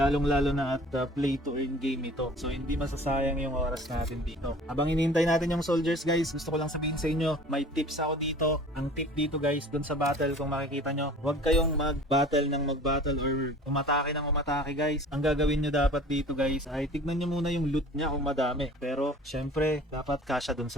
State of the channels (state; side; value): normal; both; correlation 0.45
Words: na at play to earn game ito. So, hindi masasayang yung oras natin dito. Habang inintay natin yung soldiers guys, gusto ko lang sabihin sa inyo, may tips ako dito. Ang tip dito guys, dun sa battle, kung makikita nyo, huwag kayong mag-battle ng mag-battle or umatake ng umatake guys. Ang gagawin nyo dapat dito guys ay tignan nyo muna yung loot nya kung madami. Pero syempre dapat kasya dun